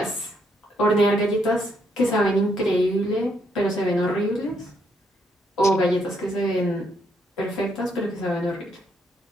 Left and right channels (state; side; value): normal; both; correlation 0.74